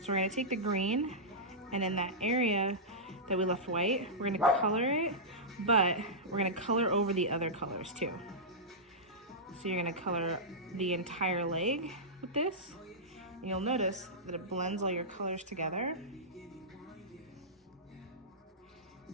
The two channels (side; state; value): both; normal; correlation -0.13